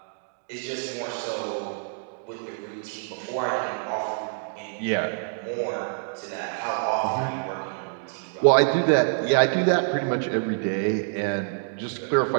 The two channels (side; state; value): left; silent; digital silence